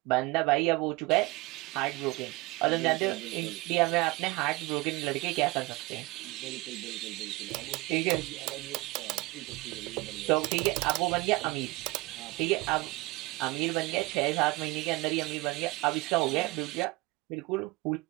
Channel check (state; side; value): quieter; left; 22.4 dB